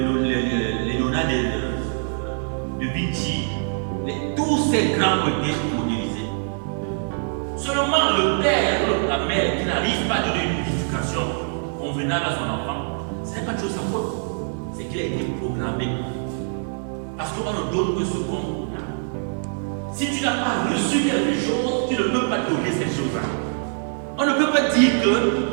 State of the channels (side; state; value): left; silent; 63 dB below the other